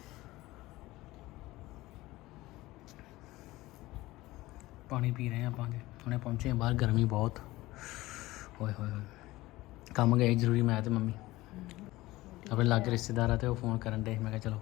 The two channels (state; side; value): quieter; right; 18.5 dB